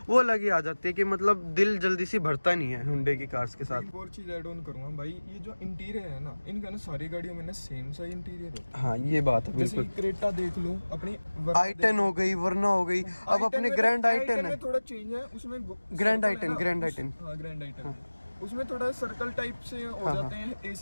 वो अलग ही आ जाती है कि मतलब दिल जल्दी से भरता नहीं है Hyundai की कार्स के साथ। एक और चीज ऐड ऑन करूंगा भाई, ये जो इंटीरियर है ना, इनका ना सारी गाड़ियों में ना सेम सा इंटीरियर होता है। हाँ ये बात है बिल्कुल। जैसे क्रेटा देख लो, अपनी i10 हो गई, वरना हो गई, अब अपने ग्रैंड i10 है, थोड़ा चेंज है उसमें, ग्रैंड i10 ग्रैंड i10 उसमें थोड़ा सर्कल टाइप से हो जाते हैं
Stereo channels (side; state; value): both; inverted; correlation -1.00